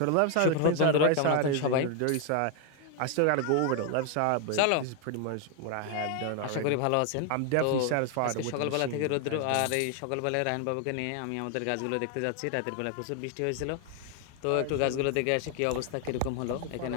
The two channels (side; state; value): both; different; correlation 0.01